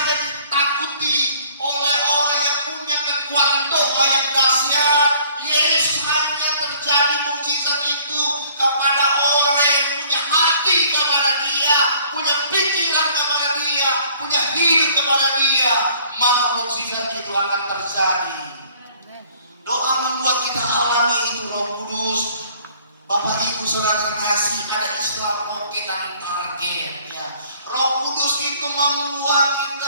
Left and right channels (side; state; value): both; inverted; correlation -0.57